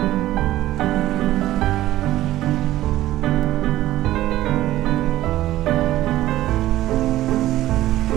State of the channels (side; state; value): left; quieter; 14.9 dB